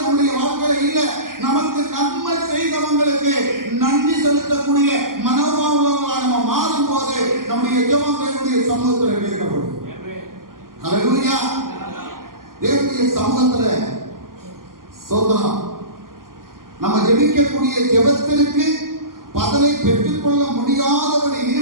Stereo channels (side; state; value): left; late; 0.91 ms